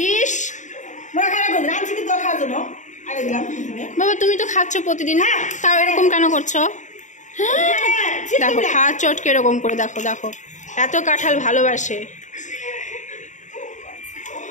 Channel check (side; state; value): right; late; 0.36 ms